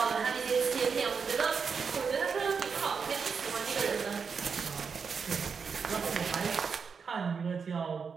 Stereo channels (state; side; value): quieter; left; 5.8 dB